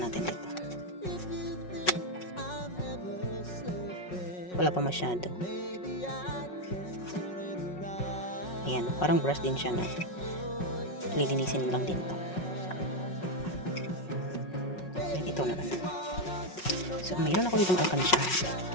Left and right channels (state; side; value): late; right; 5.4 ms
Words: dito. If you think I'm never sleeping, Wala pa masyado. maybe I can turn it around. Ayan, parang brush din siya na. Lilinisin lang din to. Ayan, ito naman. So, mayroon ako ditong alkansya.